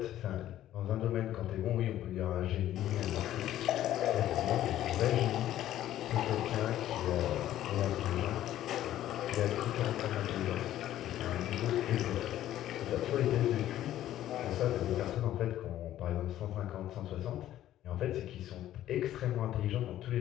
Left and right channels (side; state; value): right; quieter; 12.8 dB